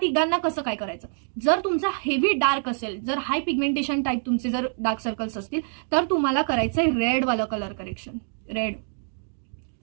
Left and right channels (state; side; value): silent; left; digital silence